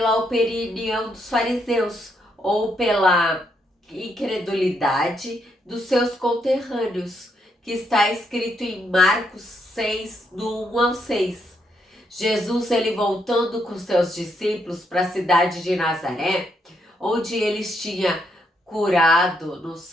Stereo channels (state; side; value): normal; both; correlation 0.76